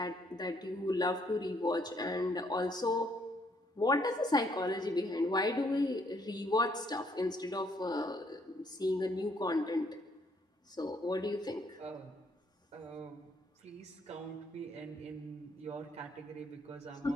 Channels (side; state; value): both; normal; correlation 0.68